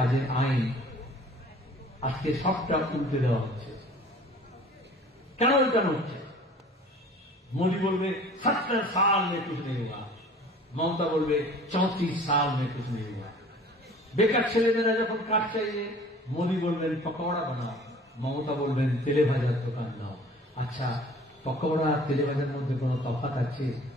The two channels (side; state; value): both; normal; correlation 0.48